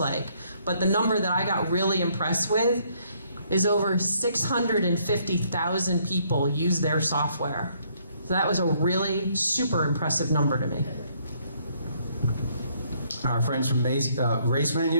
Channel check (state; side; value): inverted; both; correlation -0.68